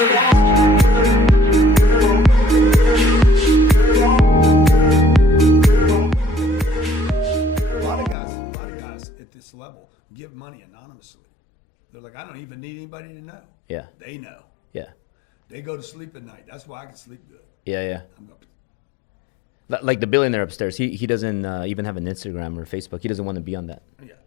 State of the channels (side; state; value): right; drops out; at 8.2 s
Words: of guys at this level give money anonymously. They're like, I don't even need anybody to know. Yeah. They know. Yeah. They go to sleep at night. That's why I can sleep good. Yeah. I'm going. Like the billionaire upstairs, he doesn't even have an Instagram or Facebook. He doesn't want to be on that. Yeah.